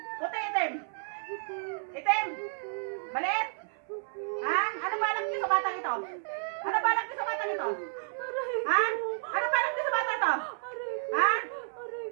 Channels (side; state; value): left; silent; 57 dB below the other